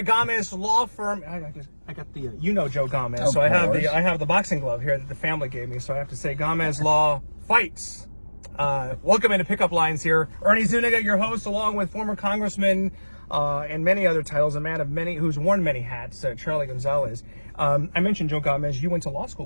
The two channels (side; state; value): both; inverted; correlation -1.00